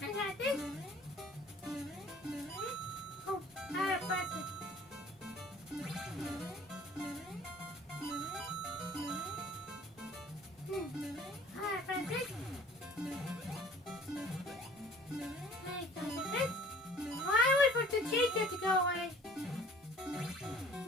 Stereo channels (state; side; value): normal; both; correlation 0.50